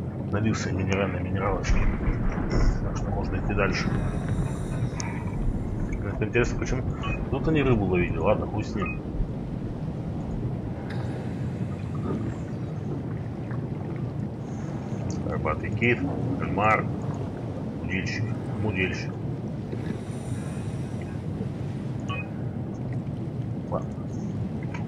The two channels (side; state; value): both; identical; correlation 1.00